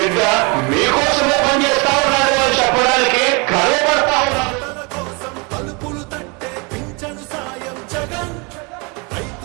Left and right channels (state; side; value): quieter; left; 30.4 dB